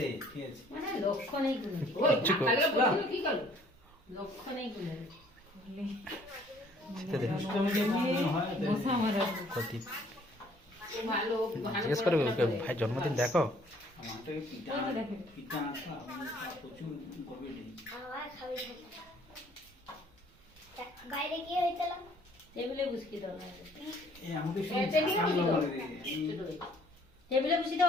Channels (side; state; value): both; normal; correlation 0.59